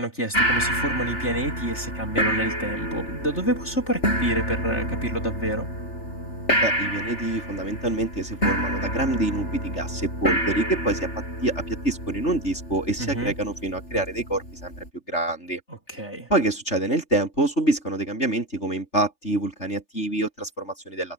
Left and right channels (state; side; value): late; right; 3.4 ms